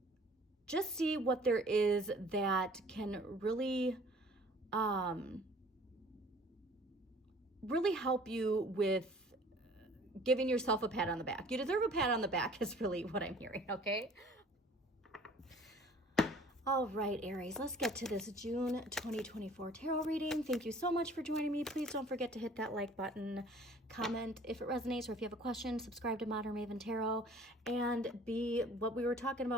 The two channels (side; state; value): both; normal; correlation 0.51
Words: just see what there is that can really, really help you with giving yourself a pat on the back. You deserve a pat on the back is really what I'm hearing, okay? All right, Aries, let's get to this June 2024 tarot reading. Thank you so much for joining me. Please don't forget to hit that like button, comment if it resonates, or if you have a question, subscribe to Modern Maven Tarot, and be what we were talking